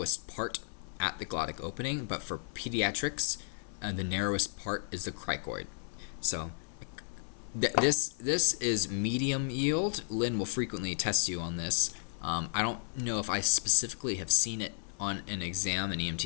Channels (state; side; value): silent; right; 56 dB below the other